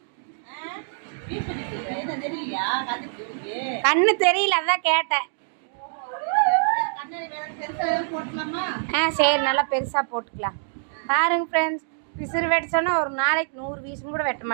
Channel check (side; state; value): left; silent; digital silence